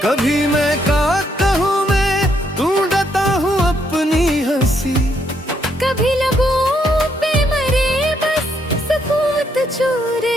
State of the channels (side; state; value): both; normal; correlation 0.74